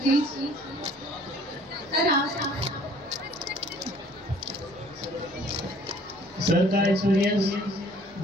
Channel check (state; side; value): normal; both; correlation 0.56